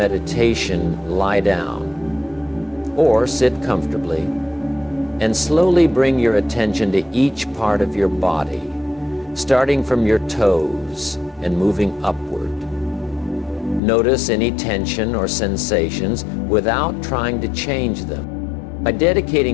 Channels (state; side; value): drops out; right; at 13.8 s